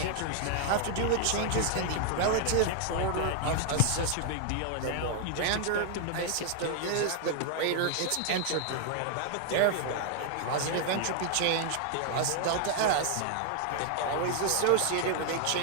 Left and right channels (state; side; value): different; both; correlation 0.00